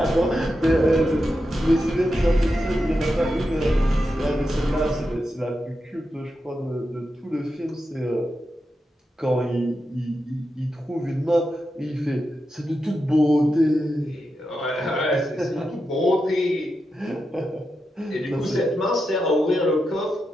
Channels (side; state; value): both; normal; correlation 0.88